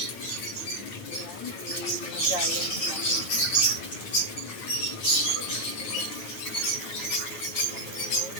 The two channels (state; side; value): late; right; 9.2 ms